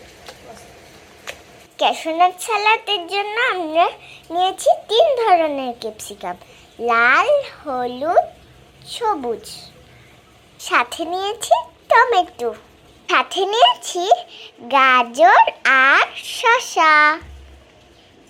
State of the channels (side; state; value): both; identical; correlation 1.00